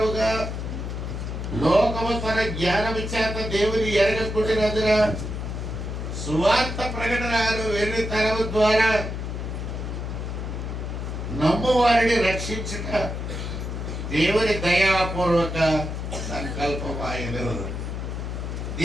లోకము తన జ్ఞానము చేత దేవుని ఎరగకుండినందున సువార్త ప్రకటనను వెర్రితనము ద్వారా నమ్ము వారిని రక్షించుట దేవుని దయాపూర్వక సంకల్పమాయను.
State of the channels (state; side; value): noise; left; hum, 5 dB below the sound